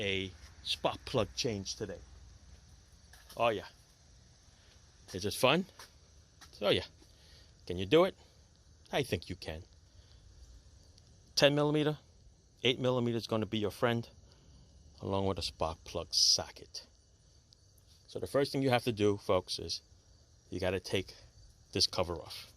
spark plug change today. Oh, yeah. Is it fun? Oh, yeah. Can you do it? I think you can. 10 millimeter, 8 millimeter is going to be your friend, along with a spark plug socket. So the first thing you have to do, folks, is you got to take this cover off.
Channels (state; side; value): identical; both; correlation 1.00